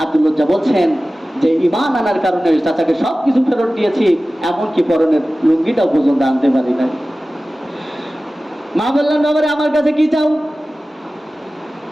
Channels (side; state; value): both; normal; correlation 0.96